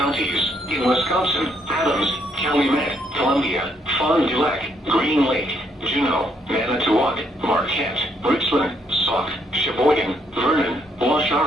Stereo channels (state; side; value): normal; both; correlation 0.72